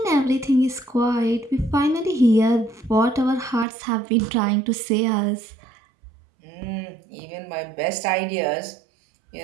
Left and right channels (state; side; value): drops out; left; at 3.7 s